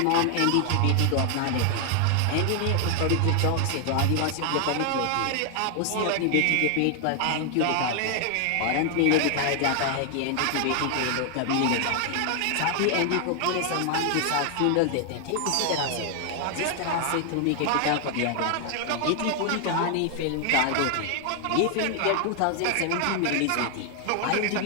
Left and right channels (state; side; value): different; both; correlation 0.00